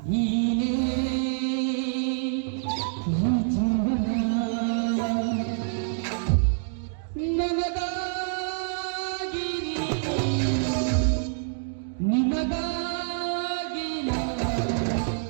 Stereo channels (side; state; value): left; silent; digital silence